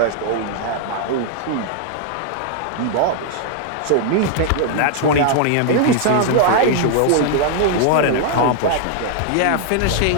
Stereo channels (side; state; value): both; different; correlation 0.00